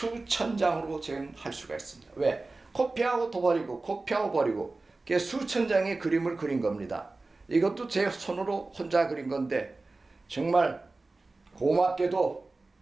장으로 저는 할 수가 있습니다. 왜? 코피하고 또 버리고 코피하고 버리고 수천 장의 그림을 그린 겁니다. 이것도 제 손으로 혼자 그린 건데 정말 고맙게도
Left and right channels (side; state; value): left; quieter; 3.4 dB